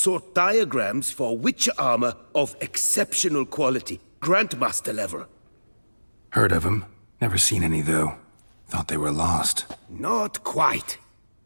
diagrams for witcher armor of exceptional quality, Grandmaster level. Heard of them. Never seen any, though. Thought they were lost. Not quite.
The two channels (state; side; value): inverted; both; correlation -1.00